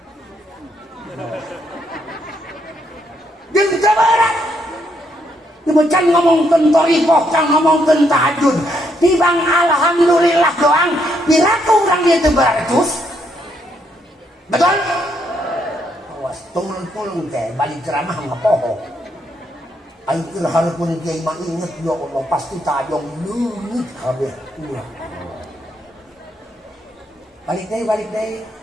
Jeung teu berat. Can ngomong tentang ikoh, can ngomong tentang tahajud. Tibang alhamdulillah doang. Piraku urang ieu teu beratus. Betul? Awas tulung-tulung teh balik ceramah ngapoho. Ayo keur hareupeun kiai mah inget ya Allah pasti tajong leungit kabeh ulah. Balik deui.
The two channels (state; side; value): normal; both; correlation 0.75